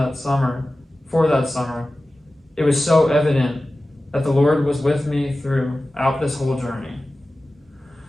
summer, it was so evident that the Lord was with me throughout this whole journey.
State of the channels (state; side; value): normal; both; correlation 0.95